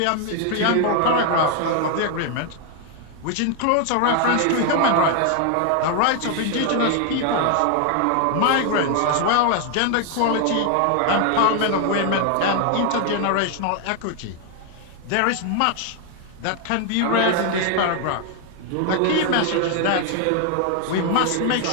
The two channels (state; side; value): different; both; correlation 0.00